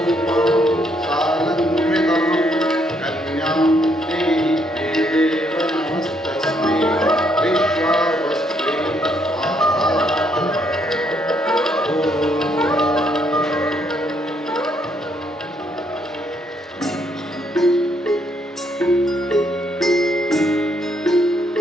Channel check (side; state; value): both; normal; correlation 0.72